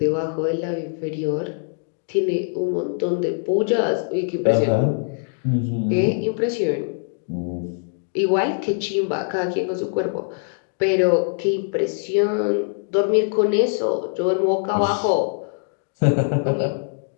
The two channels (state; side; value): silent; right; digital silence